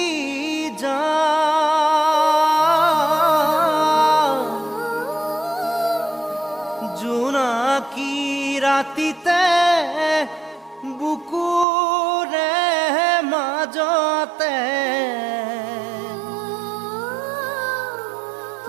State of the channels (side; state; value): left; drops out; at 11.7 s